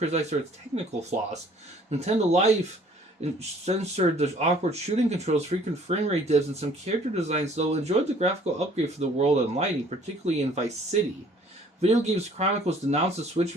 for its technical flaws. Nintendo Life censored the awkward shooting controls, frequent frame rate dips, and some character designs, though enjoyed the graphical upgrade for the world and lighting, particularly in Vice City. Video Games Chronicles denounced the Switch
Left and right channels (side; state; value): both; normal; correlation 0.56